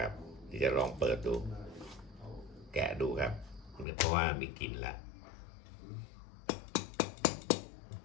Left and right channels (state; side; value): drops out; right; at 3.9 s